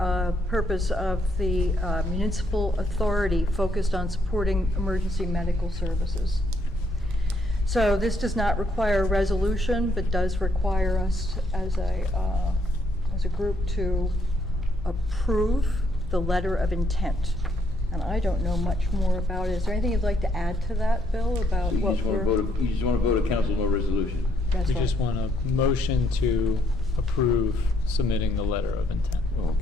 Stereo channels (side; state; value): both; normal; correlation 0.72